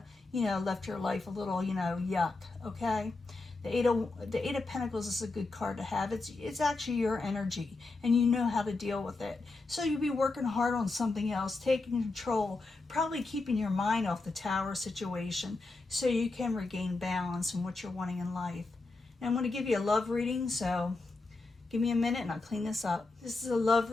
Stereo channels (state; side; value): quieter; right; 3.4 dB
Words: you know, left your life a little, you know, yuck, okay? The Eight of Pentacles is a good card to have. It's actually your energy, and you know how to deal with it. So you'll be working hard on something else, taking control, probably keeping your mind off the tower situation so you can regain balance in what you're wanting in life. And I'm going to give you a love reading, so give me a minute and I'll clean this up. This is a love